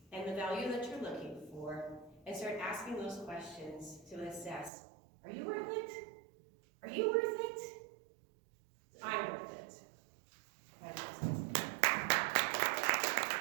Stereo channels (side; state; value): left; drops out; at 4.7 s